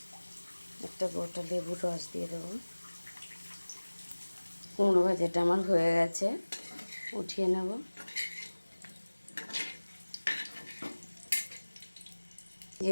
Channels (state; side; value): inverted; both; correlation -1.00